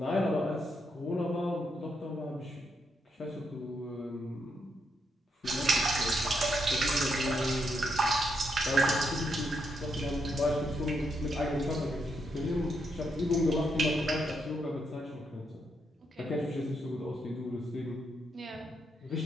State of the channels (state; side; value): normal; both; correlation 0.79